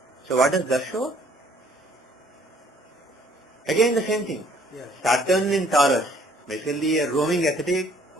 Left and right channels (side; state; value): both; normal; correlation 0.60